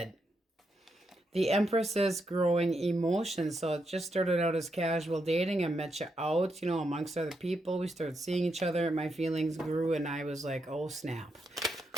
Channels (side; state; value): both; normal; correlation 0.82